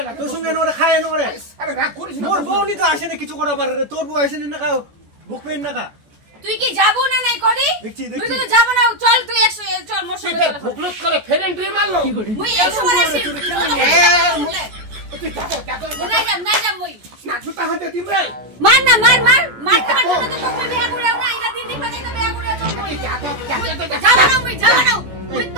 তোর সঙ্গে নোরে খায় নোরে আরে রাগ করিস না মোর বউ নি তো আসে না কিছু করা পারে রে তোর বউ আসে না খাও বুক পেন না খা তুই কি যাবো না নাই করি দেখছি তুই তো যাব না চল তুই 100 চল মোর সঙ্গে চল ভুকলুত করে ফের এন্ট্রি মারলো মুই 100 বার আসি তুই যাবো নাই যাম মুই না জুতা হাতে দিম রে মার না মার তোমার জন্য তো তোকে বিয়া করে না এটা দিন দিন তো বিয়া করে তো মুই যাব না মুই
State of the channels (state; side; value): late; left; 14 ms